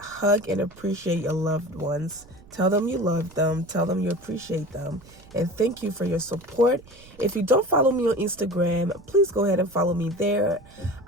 and appreciate your loved ones. Tell them you love them. Tell them you appreciate them. And thank you for your support. If you don't follow me on Instagram, please go ahead and follow me there.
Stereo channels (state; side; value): noise; right; rumble, 23 dB below the sound